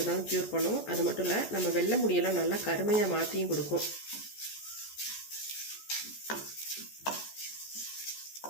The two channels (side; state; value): right; late; 14 ms